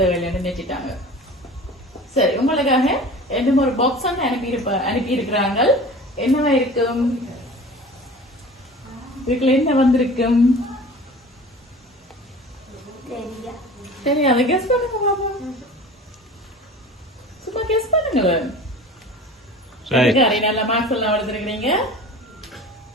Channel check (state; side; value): normal; both; correlation 0.40